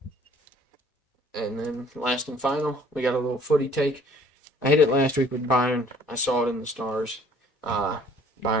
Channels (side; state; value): both; normal; correlation 0.54